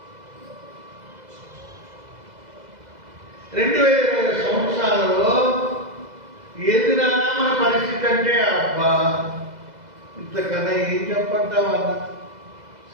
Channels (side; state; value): left; late; 2.0 ms